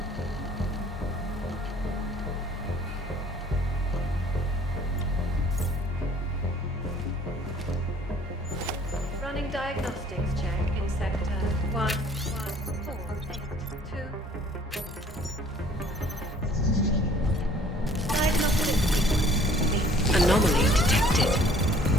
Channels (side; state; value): both; normal; correlation 0.55